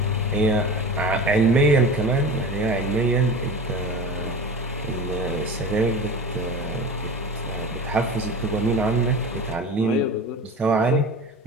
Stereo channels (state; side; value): normal; both; correlation 0.34